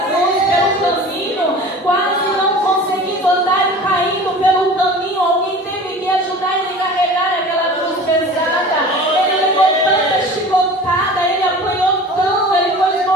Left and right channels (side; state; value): both; normal; correlation 0.40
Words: cruz pelo caminho, quase não conseguindo andar e caindo pelo caminho, alguém teve que ajudar Ele a carregar aquela cruz pesada. Ele levou tanta chicotada, Ele apanhou tanto, Ele foi